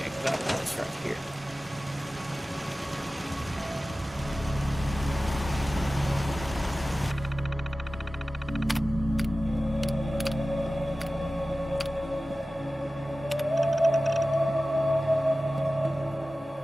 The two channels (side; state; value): both; normal; correlation 0.96